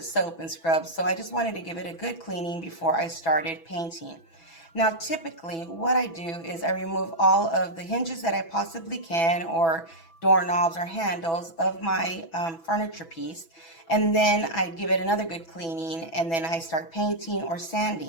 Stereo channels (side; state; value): right; late; 6.0 ms